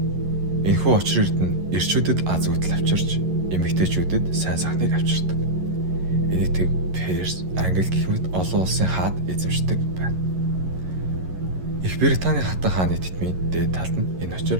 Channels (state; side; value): late; left; 11 ms